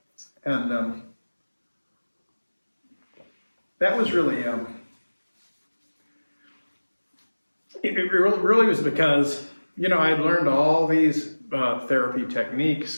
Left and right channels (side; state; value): both; inverted; correlation -1.00